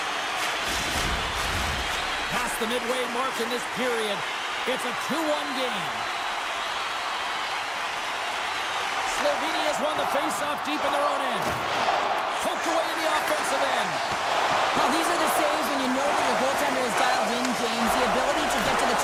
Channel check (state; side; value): identical; both; correlation 1.00